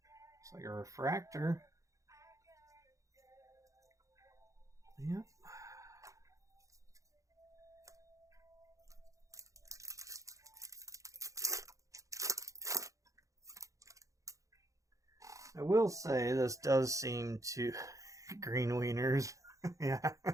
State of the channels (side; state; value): left; late; 0.16 ms